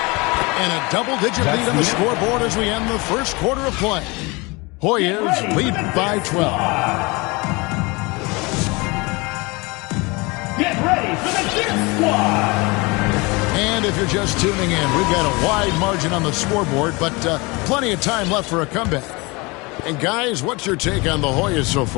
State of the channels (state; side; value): quieter; right; 26.1 dB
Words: And a double-digit lead on the scoreboard as we end the first quarter of play. Hoyas lead by 12. Get ready for the Dip Squad. And if you're just tuning in, we've got a wide margin on the scoreboard, but plenty of time left for a comeback. And guys, what's your take on the Hoyas so